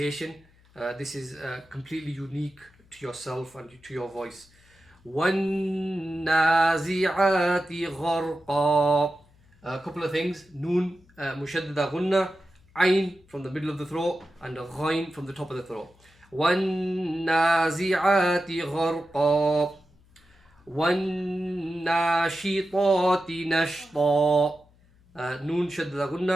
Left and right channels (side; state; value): left; noise; hum, 30 dB below the sound